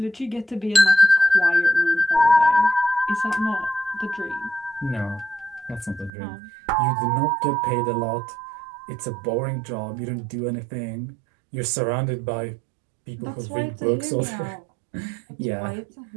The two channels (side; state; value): left; drops out; at 6.1 s